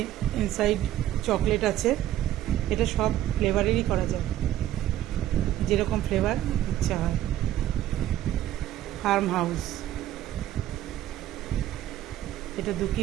ইনসাইড চকলেট আছে। এটা সব ফ্লেভারেরই করা যায়, যেরকম ফ্লেভার ইচ্ছা হয়। ফার্ম হাউস, এটা 2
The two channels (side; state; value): left; quieter; 12.9 dB